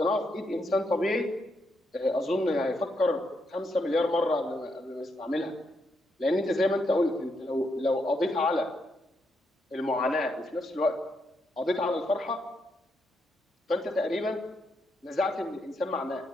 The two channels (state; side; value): normal; both; correlation 0.80